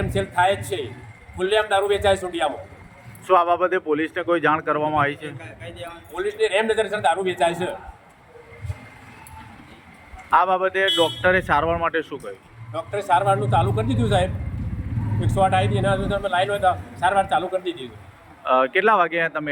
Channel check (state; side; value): identical; both; correlation 1.00